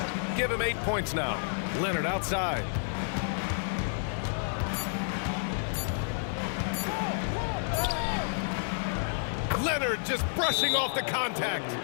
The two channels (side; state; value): right; silent; digital silence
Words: Give him 8 points now. Leonard outside. Leonard just brushing off the contact.